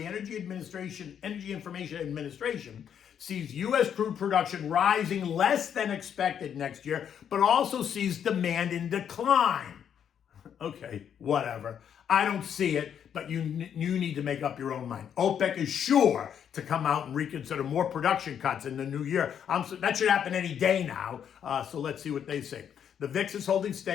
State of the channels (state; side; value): quieter; right; 8.6 dB